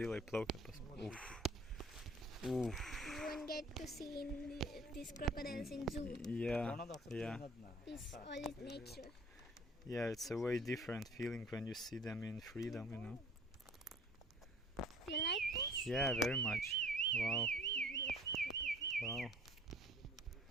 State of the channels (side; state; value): both; normal; correlation 0.50